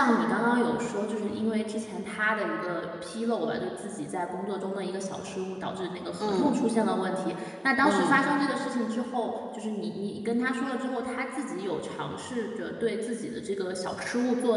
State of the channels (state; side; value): identical; both; correlation 1.00